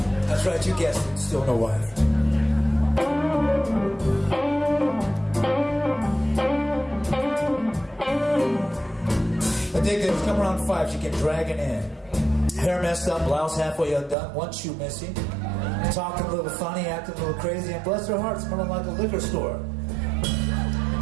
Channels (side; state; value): left; drops out; at 14.2 s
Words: That's right. You guessed it. Still no wife. The day that was coming around 5, she came dragging in. Hair messed up, blouse halfway undone, one shoe missing, talking a little funny, acting a little crazy, and bless her heart, smelling like a liquor store.